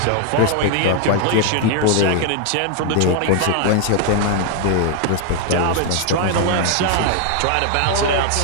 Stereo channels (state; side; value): different; both; correlation 0.00